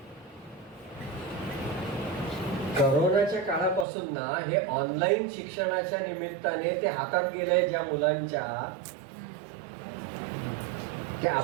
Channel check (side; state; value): left; drops out; at 3.9 s